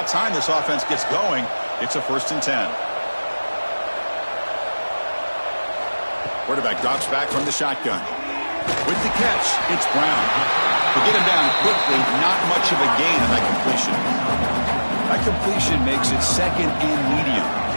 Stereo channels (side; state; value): both; inverted; correlation -1.00